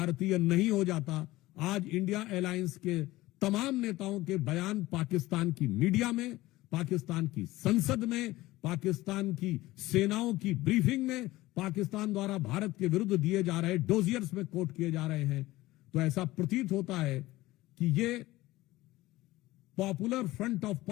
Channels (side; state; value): right; quieter; 18.0 dB